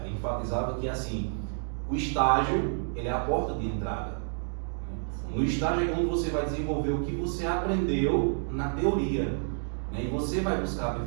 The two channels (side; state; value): left; silent; digital silence